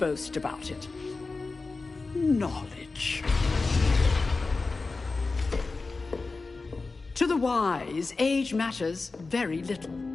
about it. Knowledge. To the wise, age matters very little.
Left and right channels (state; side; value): quieter; right; 3.8 dB